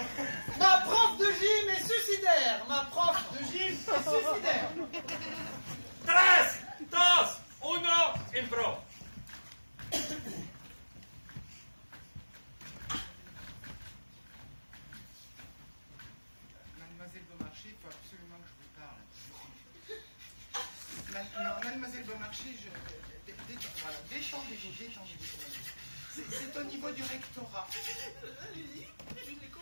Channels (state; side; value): inverted; both; correlation -1.00